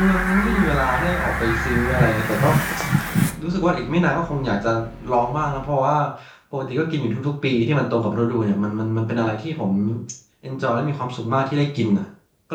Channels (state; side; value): identical; both; correlation 1.00